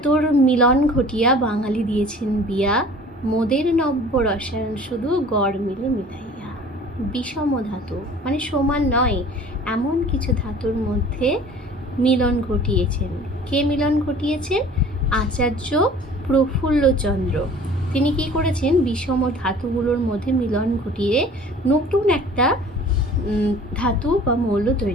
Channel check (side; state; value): both; normal; correlation 0.47